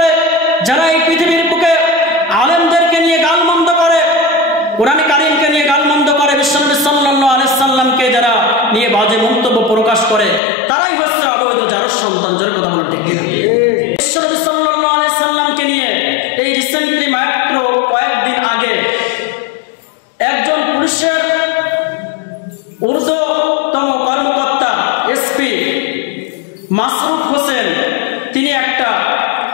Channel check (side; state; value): right; drops out; at 10.4 s